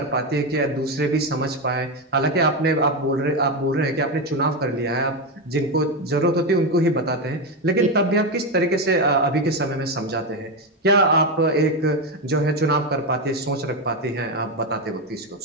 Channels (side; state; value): both; normal; correlation 0.11